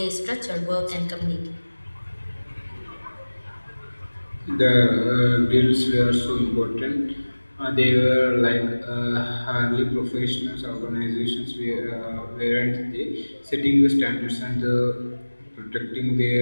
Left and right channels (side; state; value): both; inverted; correlation -1.00